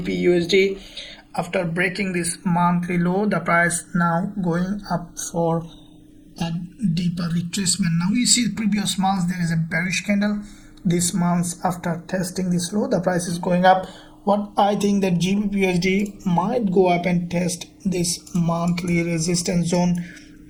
after breaking this monthly low, the price now going up for a deeper retracement. Now we see previous months there is a bearish candle. This month, after testing this low, the price is going up. What I think that GBPUSD might go up and test this monthly resistance zone,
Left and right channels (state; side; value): identical; both; correlation 1.00